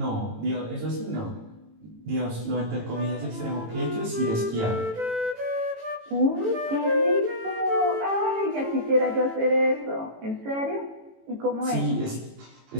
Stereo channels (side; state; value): left; late; 18 ms